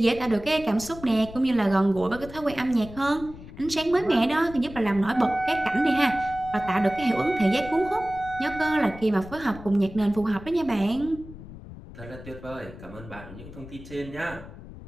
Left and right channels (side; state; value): left; noise; rumble, 15 dB below the sound